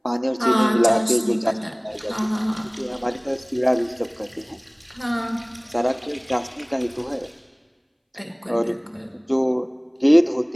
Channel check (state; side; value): identical; both; correlation 1.00